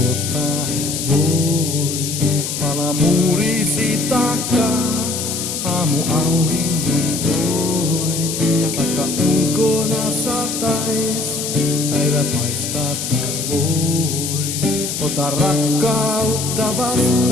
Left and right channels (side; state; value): left; noise; hiss, 4 dB below the sound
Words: et voi? Pala muurisi takaa, aamu auringon toi. Vaikka ulkona satais, päivä paistaa taas vois. Ota rakkautta